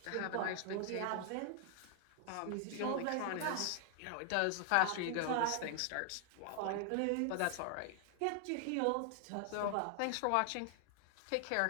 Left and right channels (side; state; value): both; different; correlation 0.00